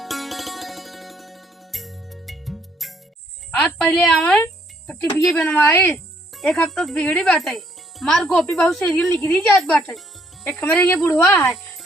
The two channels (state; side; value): normal; both; correlation 0.67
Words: आज पहले आवे तो टीवी बनवाए, एक हफ्ता से बिगड़ी बाटे। मार गोपी बहुत सीरियल निकली जात बाटे। एक हमारे ये बुढ़वा है